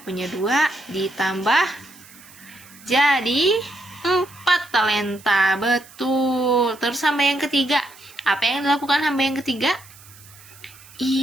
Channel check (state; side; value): noise; right; hiss, 22 dB below the sound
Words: 2, ditambah jadi 4 talenta, betul. Terus hamba yang ketiga, apa yang dilakukan hamba yang ketiga?